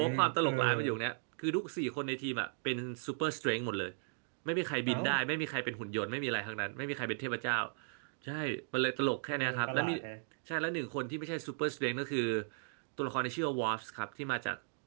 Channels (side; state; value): left; silent; digital silence